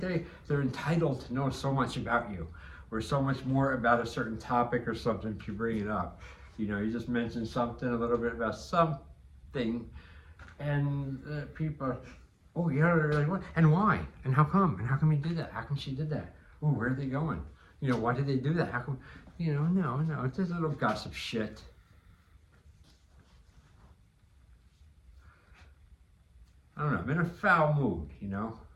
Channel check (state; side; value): identical; both; correlation 1.00